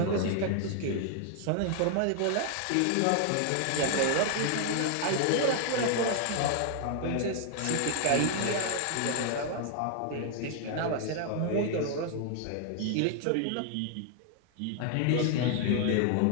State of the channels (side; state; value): both; different; correlation 0.00